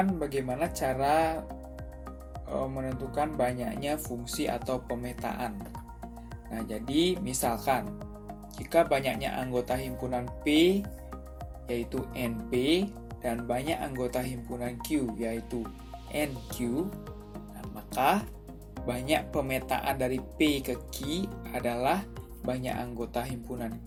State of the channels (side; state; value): both; identical; correlation 1.00